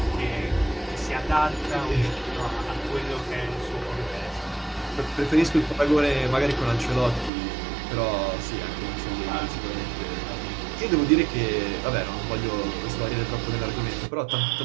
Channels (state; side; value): drops out; left; at 7.3 s